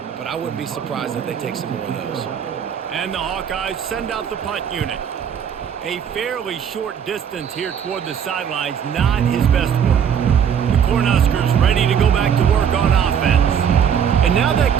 but I wouldn't be surprised if they take some more of those. And the Hawkeyes send out the punt unit. A fairly short distance here toward the sidelines, not his best work. The Cornhuskers ready to go back to work on offense. And now that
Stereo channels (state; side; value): quieter; left; 8.0 dB